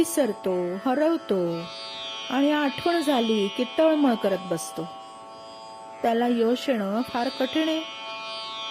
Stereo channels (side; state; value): both; identical; correlation 1.00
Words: हरवतो आणि आठवण झाली की तळमळ करत बसतो, त्याला यश येणं फार कठीण आहे.